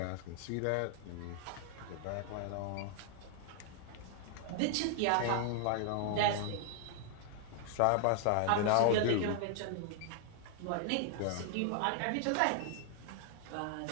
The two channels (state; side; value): different; both; correlation 0.00